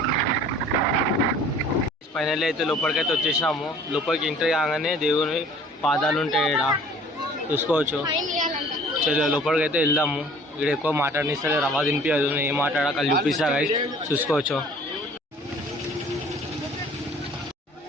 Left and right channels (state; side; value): normal; both; correlation 0.50